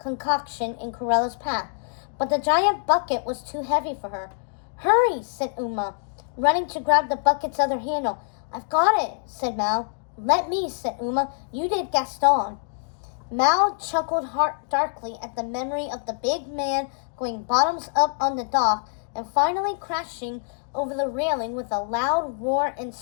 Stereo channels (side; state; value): right; silent; digital silence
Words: in Cruella's path, but the giant bucket was too heavy for her. "Hurry," said Uma, running to grab the bucket's other handle. "I've got it," said Mal. "Let me," said Uma. "You did Gaston." Mal chuckled darkly at the memory of the big man going bottoms up on the dock and finally crashing over the railing with a loud roar and